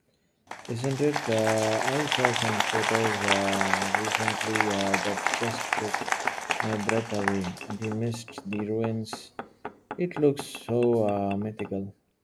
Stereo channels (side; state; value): both; identical; correlation 1.00